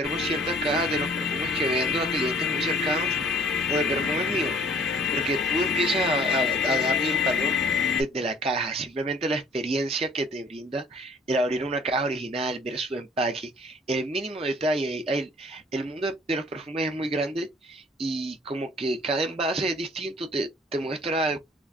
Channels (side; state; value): both; normal; correlation 0.55